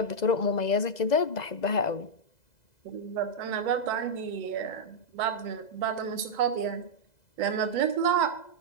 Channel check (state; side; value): late; right; 2.0 ms